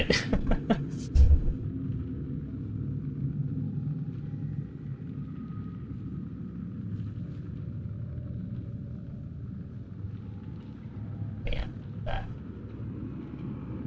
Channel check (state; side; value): identical; both; correlation 1.00